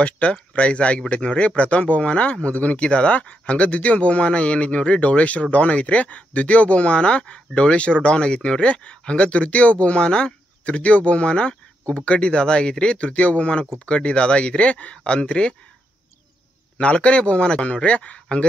ಪ್ರೈಸ್ ಆಗಿಬಿಟ್ಟೈತಿ ನೋಡ್ರಿ. ಪ್ರಥಮ ಬಹುಮಾನ ಮುದುಗುನಿಕಿ ದಾದಾ. ಹಂಗ ದ್ವಿತೀಯ ಬಹುಮಾನ ಏನೈತಿ ನೋಡ್ರಿ ಡೌಳೇಶ್ವರ ಡೌನ್ ಐತ್ರಿ. ದ್ವಿತೀಯ ಬಹುಮಾನ ಡೌಳೇಶ್ವರ ಡೌನ್ ಆಗೈತಿ ನೋಡ್ರಿ. ಹಂಗ ತೃತೀಯ ಬಹುಮಾನ ಕುಬ್ಕಡ್ಡಿ ದಾದಾ ಆಗೈತ್ರಿ. ತೃತೀಯ ಬಹುಮಾನ ಕುಬ್ಕಡ್ಡಿ ದಾದಾ ಆಗೈತ್ರಿ ಅಂತ್ರಿ. 4ನೇ ಬಹುಮಾನ ನೋಡ್ರಿ.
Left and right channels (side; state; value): both; normal; correlation 0.81